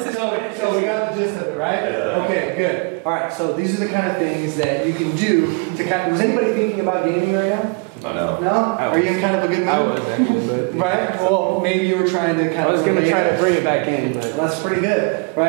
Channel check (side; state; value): left; quieter; 33.0 dB